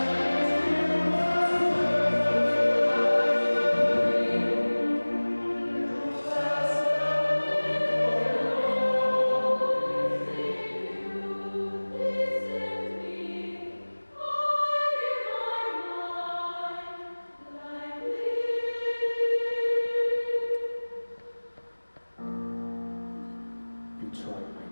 You tried my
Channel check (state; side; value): inverted; both; correlation -1.00